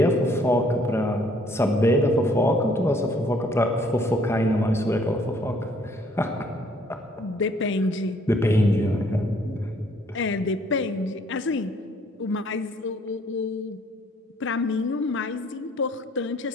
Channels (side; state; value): both; normal; correlation 0.62